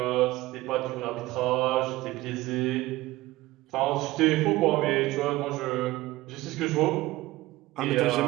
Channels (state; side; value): quieter; left; 18.3 dB